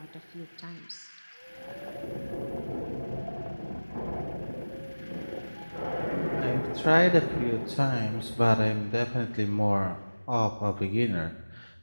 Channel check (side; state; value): both; inverted; correlation -1.00